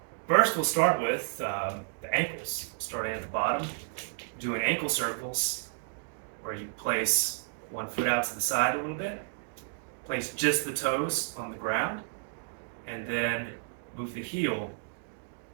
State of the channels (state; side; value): silent; left; digital silence